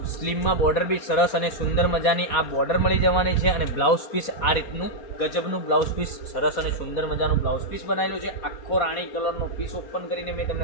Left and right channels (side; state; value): right; late; 4.1 ms